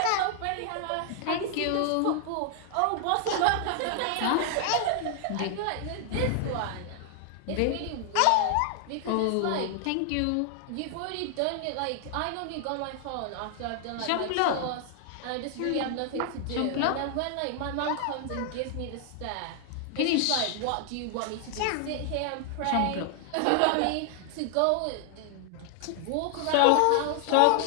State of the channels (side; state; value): both; different; correlation 0.00